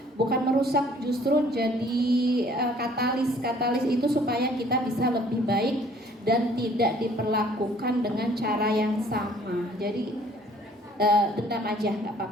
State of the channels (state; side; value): normal; both; correlation 0.57